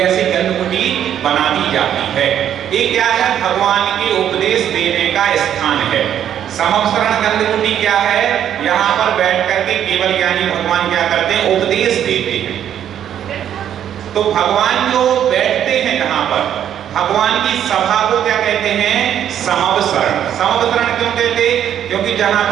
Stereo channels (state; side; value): quieter; left; 10.0 dB